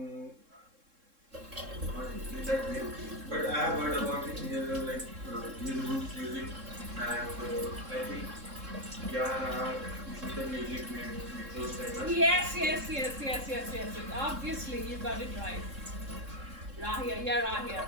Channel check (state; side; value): late; left; 3.7 ms